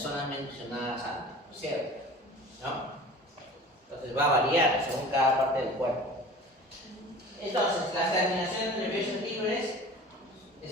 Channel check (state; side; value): normal; both; correlation 0.41